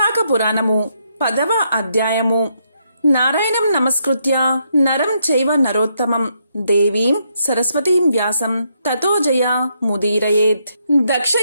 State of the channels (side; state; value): both; inverted; correlation -0.76